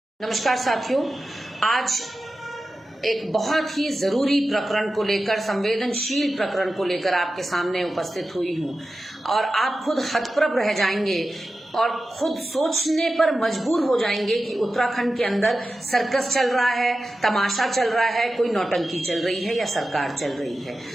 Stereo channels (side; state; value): both; normal; correlation 0.93